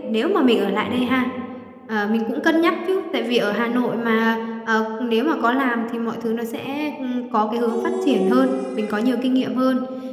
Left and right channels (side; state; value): both; identical; correlation 1.00